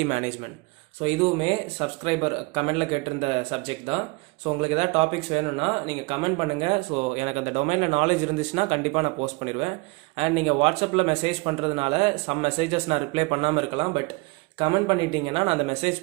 management. So இதுவுமே சப்ஸ்கிரைபர் கமெண்டில் கேட்டிருந்த சப்ஜெக்ட் தான். ஸோ உங்களுக்கு ஏதாவது டாபிக்ஸ் வேணும்னா நீங்கள் கமெண்ட் பண்ணுங்கள். ஸோ எனக்கு அந்த டொமைனில் நாலேஜ் இருந்துச்சுன்னா கண்டிப்பாக நான் போஸ்ட் பண்ணிடுவேன். அண்ட் நீங்கள் வாட்ஸ்அப்பில் மெசேஜ் பண்ணுறதுனால சம் மெசேஜஸ் நான் ரிப்ளை பண்ணாமல் இருக்கலாம். பட் கமெண்ட் பண்ணிட்டீங்கன்னா நான் அந்த மெசேஜ்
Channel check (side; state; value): left; quieter; 26.9 dB